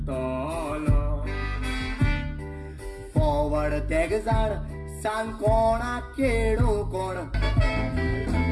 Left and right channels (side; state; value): both; identical; correlation 1.00